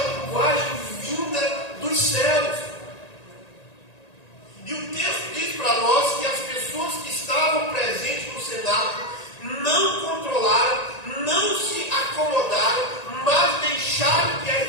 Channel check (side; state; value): right; late; 1.9 ms